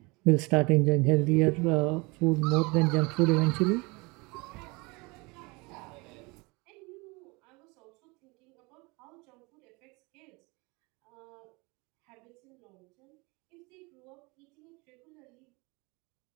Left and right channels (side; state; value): left; quieter; 26.6 dB